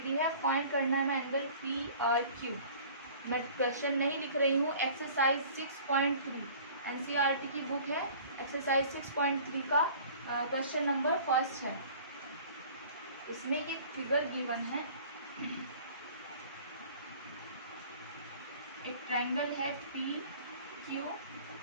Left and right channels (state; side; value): inverted; both; correlation -0.47